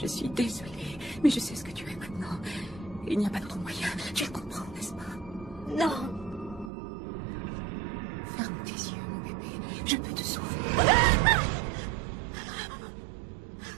suis désolée, mais je sais ce que tu es maintenant. Il n'y a pas d'autre moyen. Tu le comprends, n'est-ce pas? Non! Ferme tes yeux, mon bébé. Je peux te sauver.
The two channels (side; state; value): left; drops out; at 6.7 s